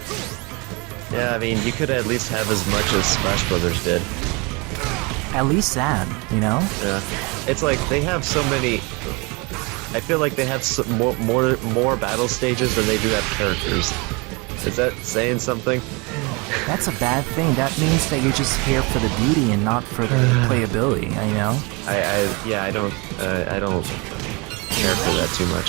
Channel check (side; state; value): left; quieter; 28.5 dB